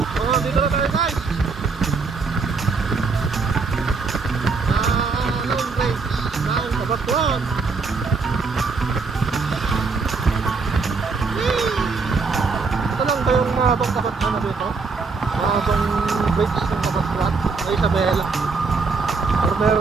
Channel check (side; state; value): left; quieter; 4.5 dB